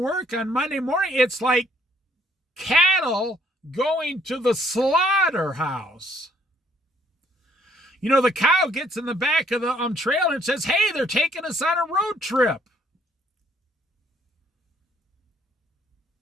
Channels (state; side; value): normal; both; correlation 0.65